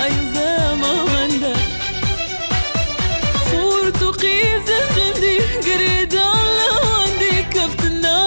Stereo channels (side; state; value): both; inverted; correlation -1.00